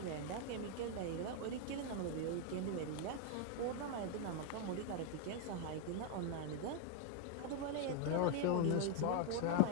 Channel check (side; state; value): both; different; correlation 0.00